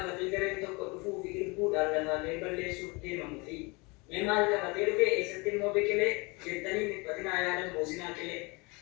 gareen tokko dhufuu fi irbuudhaan lafaalee balleessuuf deemamu fi mee maal qabatee dhufe eessatti immoo biqilee jettanii dhiphatinaa yaadan boosinaa qilee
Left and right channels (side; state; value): right; quieter; 27.4 dB